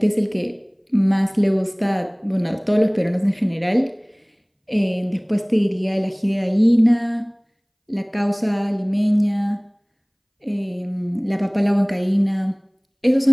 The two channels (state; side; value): identical; both; correlation 1.00